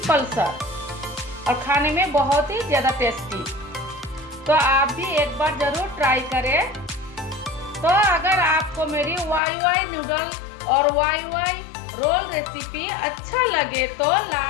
सा। और खाने में बहुत ही ज़्यादा टेस्टी। तो आप भी एक बार ज़रूर ट्राई करें। तो अगर आपको मेरी YY नूडल और YY रोल रेसिपी अच्छा लगे तो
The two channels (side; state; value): right; drops out; at 9.4 s